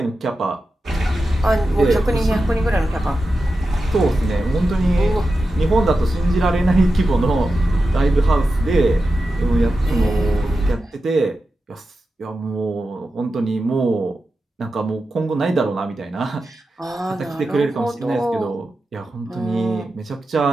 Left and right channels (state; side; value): normal; both; correlation 0.91